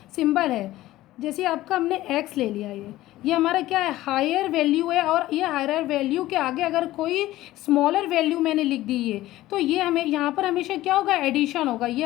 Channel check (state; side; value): quieter; right; 15.9 dB